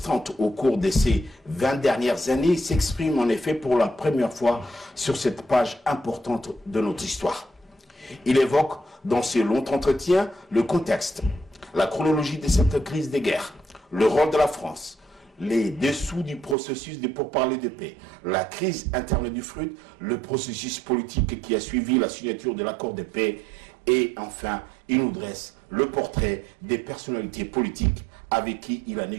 au cours de ces 20 dernières années, s'exprime en effet pour la première fois sur cette page importante de notre histoire. Il évoque dans ce long entretien le contexte, la chronologie de cette crise des guerres, le rôle de la France, les dessous du processus de pourparlers de paix, la crise interne du FRUD, le processus politique qui a suivi la signature de l'accord de paix et enfin, il nous dresse le portrait des personnalités politiques avec qui il a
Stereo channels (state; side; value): drops out; left; at 16.6 s